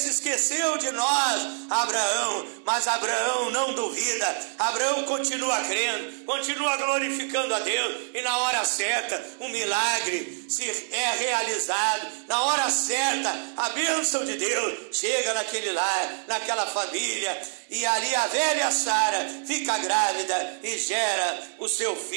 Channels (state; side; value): silent; left; digital silence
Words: esqueceu de nós, Abraão, mas Abraão não duvida, Abraão continua crendo, continua glorificando a Deus, e na hora certa o milagre é realizado, na hora certa a bênção de Deus chega naquele lar, naquela família, e ali a velha Sara fica grávida e gera o seu